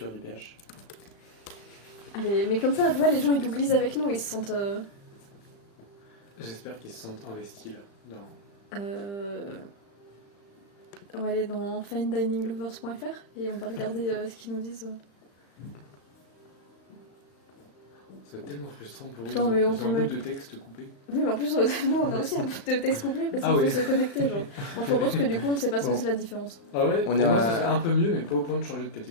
du PH. Allez, mais comme ça, tu vois, les gens ils googlisent avec nous, ils se sentent. J'espère qu'ils se sentent investis là. Dans... On va aller dans finedininglovers.fr et on va regarder ce qu'ils nous disent. Ça va être tellement frustrant pour Putain, eux. mais on Ils peut ont un bout mettre- de texte coupé. Oui, mais en plus, nous on a aussi un bout de texte couplé parce qu'il Ah faut oui. se connecter. Genre. Bon, je propose que du coup on sait pas ce que Bon. c'est la différence. Ah ouais, On pour est moi à- ça serait un peu mieux mais pas au point de changer de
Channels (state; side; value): late; right; 35 ms